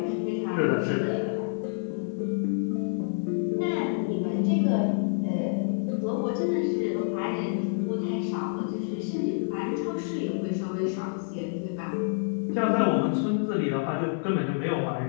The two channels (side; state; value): right; silent; 59 dB below the other